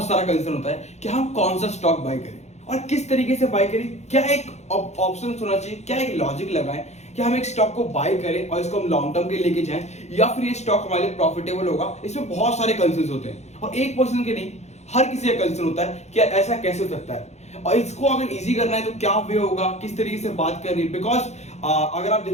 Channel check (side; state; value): right; late; 0.32 ms